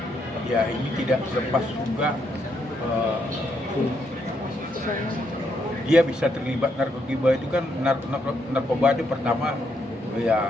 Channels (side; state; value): both; normal; correlation 0.76